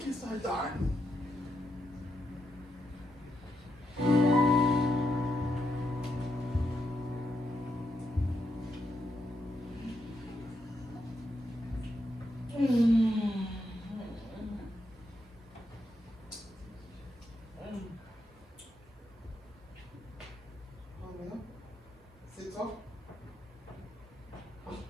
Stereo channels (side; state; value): both; normal; correlation 0.82